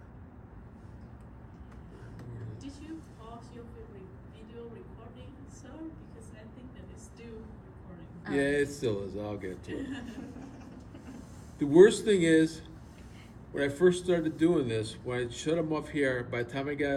Did you pause your video recording, sir? Because I think that it's still recording. Yeah, it still is. I'll get to it. The worst thing is, when I first started doing this, when I shut them off here, by the time I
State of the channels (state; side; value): identical; both; correlation 1.00